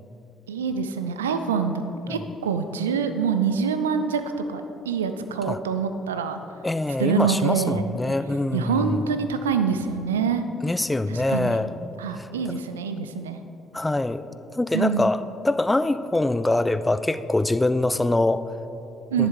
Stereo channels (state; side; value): normal; both; correlation 0.45